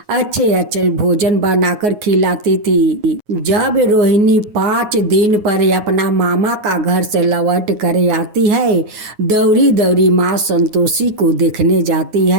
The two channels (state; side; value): late; left; 9.5 ms